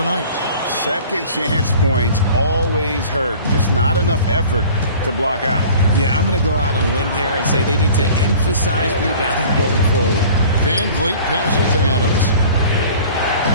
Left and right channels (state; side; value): inverted; both; correlation -0.45